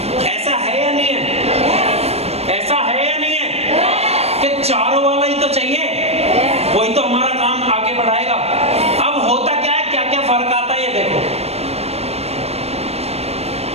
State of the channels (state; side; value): late; left; 0.30 ms